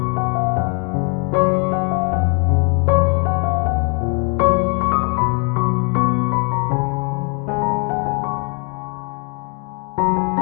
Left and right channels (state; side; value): quieter; right; 37.6 dB